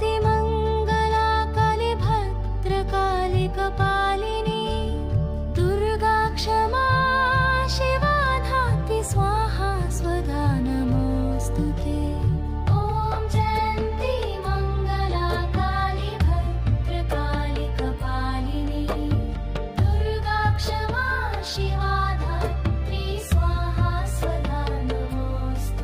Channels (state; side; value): identical; both; correlation 1.00